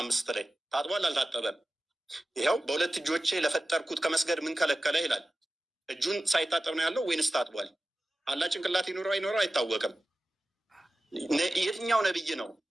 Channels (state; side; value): normal; both; correlation 0.95